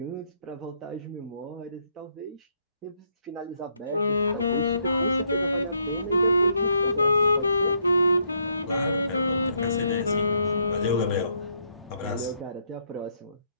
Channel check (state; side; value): inverted; both; correlation -0.73